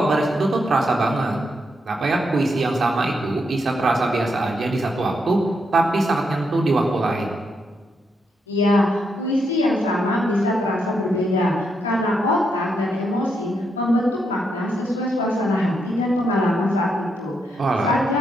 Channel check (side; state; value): both; normal; correlation 0.80